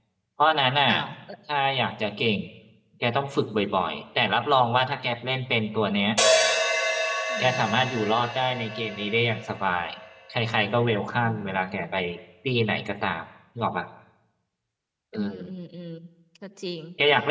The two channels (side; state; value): both; identical; correlation 1.00